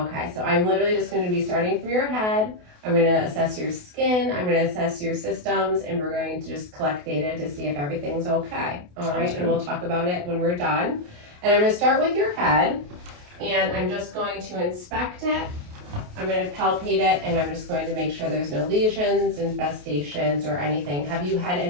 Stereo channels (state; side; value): late; left; 28 ms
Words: so I'm literally just going to be starting from your head. I'm going to assess your skin, I'm going to assess your systems, and we're going to just collect data to see if everything's okay. All right, and we'll talk about it when we're done. And I'm going to start with your head, and I'm just going to inspect it. I'm going to palpate it, and I'm just going to make sure there's no lesions, infestations, or anything. Have you had